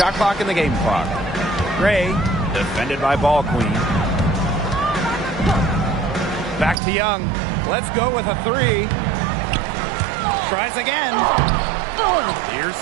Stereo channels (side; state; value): left; drops out; at 6.8 s